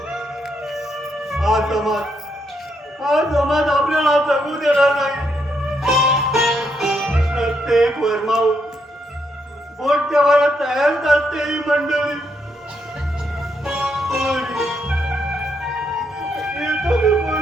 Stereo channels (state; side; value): normal; both; correlation 0.77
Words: हा समाज आपल्याला जगू देणार नाही. प्रत्येक वर्मावर बोट ठेवायला तयारच असते ही मंडळी.